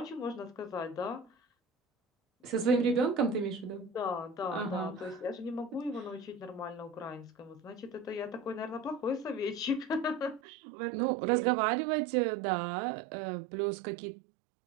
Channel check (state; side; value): drops out; left; at 10.4 s